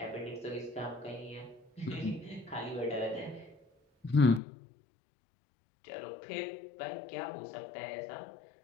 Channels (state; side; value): drops out; right; at 4.4 s